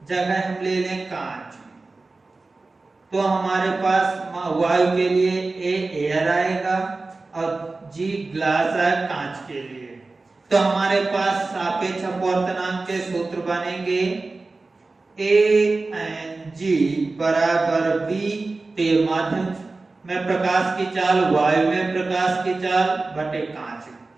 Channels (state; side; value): quieter; left; 3.5 dB